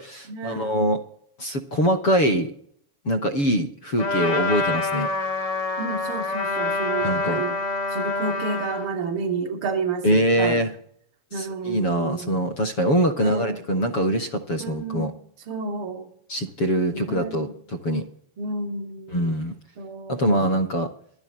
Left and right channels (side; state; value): right; late; 7.1 ms